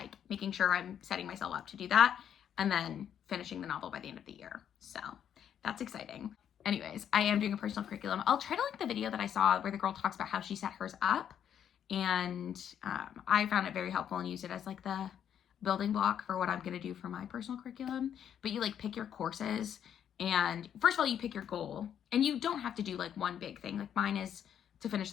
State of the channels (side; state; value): right; quieter; 9.2 dB